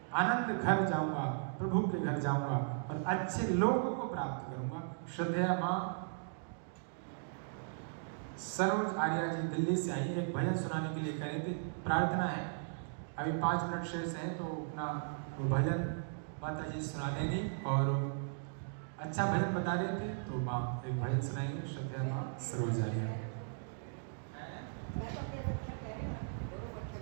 आनंद घर जाऊंगा, प्रभु के घर जाऊंगा और अच्छे लोगों को प्राप्त करूंगा। श्रद्धेया माँ सरोज आर्या जी दिल्ली से आई, एक भजन सुनाने के लिए कह रहे थे, प्रार्थना है। अभी 5 मिनट शेष है तो अपना वो भजन माता जी सुना देंगी और अच्छा भजन बता रहे थे तो माँ एक भजन सुनाएंगे। श्रद्धेया माँ सरोज आर्या।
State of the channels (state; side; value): silent; left; digital silence